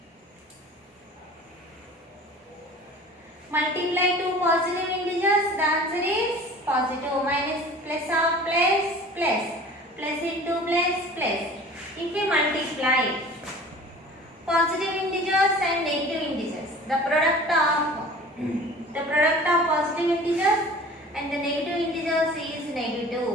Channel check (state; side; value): normal; both; correlation 0.43